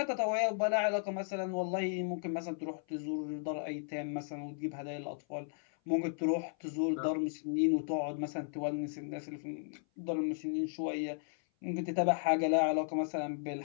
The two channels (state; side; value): silent; right; 54 dB below the other